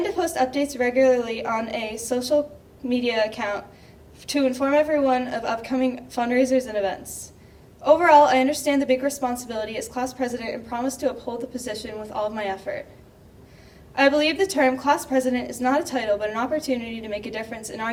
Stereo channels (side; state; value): both; identical; correlation 1.00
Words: to post updates regularly on a social media account to inform everyone of upcoming fundraisers and events. Overall, I understand the big responsibility as class president and promise to uphold the position with all of my effort. I believe the term class president is not a title, but an opportunity to make a difference in our